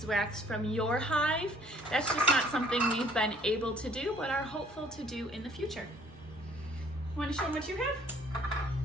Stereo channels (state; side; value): normal; both; correlation 0.59